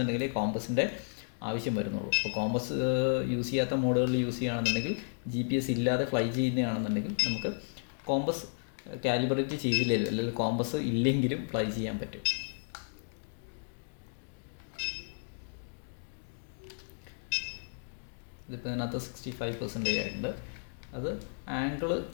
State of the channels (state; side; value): silent; right; digital silence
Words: കോമ്പസിൻ്റെ ആവശ്യം വരുന്നുള്ളൂ. അപ്പോൾ കോമ്പസ് യൂസ് ചെയ്യാത്ത മോഡുകളിൽ യൂസ് ചെയ്യുകയാണെന്നുണ്ടെങ്കിൽ GPS ഇല്ലാതെ ഫ്ലൈ ചെയ്യുന്നതാണെന്നുണ്ടെങ്കിൽ നമുക്ക് കോമ്പസ് കാലിബ്രേറ്റ് ചെയ്തില്ലെങ്കിലും അല്ലെങ്കിൽ കോമ്പസ് ഇല്ലെങ്കിലും ഫ്ലൈ ചെയ്യാൻ പറ്റും. ഇതിപ്പോൾ ഇതിനകത്ത് 65% ആയിട്ടുണ്ട്. അത് ആംഗിൾ